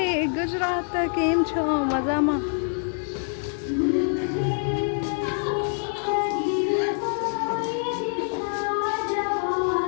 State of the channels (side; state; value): right; silent; 56 dB below the other